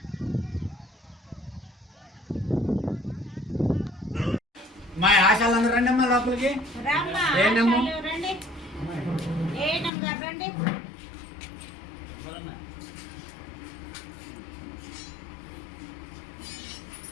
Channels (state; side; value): drops out; right; at 9.9 s